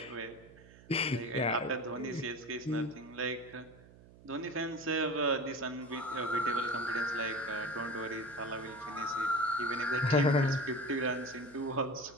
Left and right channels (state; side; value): noise; right; hum, 22 dB below the sound